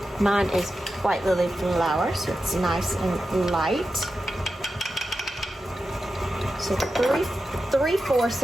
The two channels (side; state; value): both; normal; correlation 0.91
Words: mine is white lily flour, so it's nice and light. So 3/4